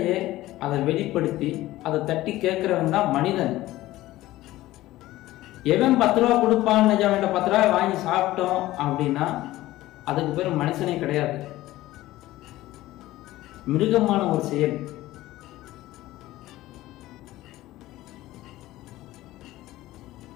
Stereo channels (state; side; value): quieter; right; 16.5 dB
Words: அதை வெளிப்படுத்தி அதை தட்டி கேட்கிறவன் தான் மனிதன். எவன் 10 ரூபா கொடுப்பான், அவன் 10 ரூபாய் வாங்கி சாப்பிட்டோம் அப்படின்னா அதுக்கு பேர் மனுஷனே கிடையாது, மிருகமான ஒரு செயல்.